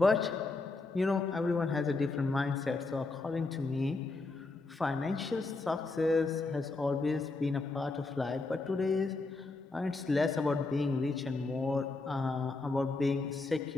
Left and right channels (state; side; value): quieter; right; 3.5 dB